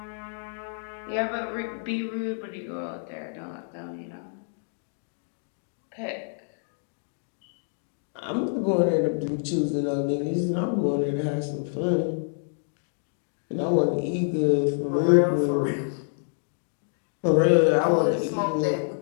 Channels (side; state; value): right; silent; digital silence